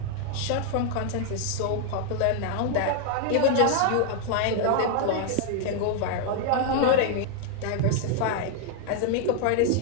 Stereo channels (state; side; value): different; both; correlation 0.00